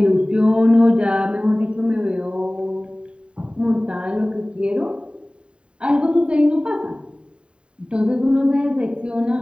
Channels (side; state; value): left; late; 0.054 ms